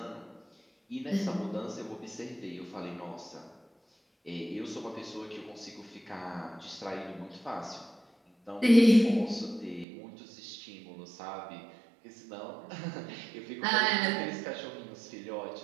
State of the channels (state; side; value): drops out; left; at 9.9 s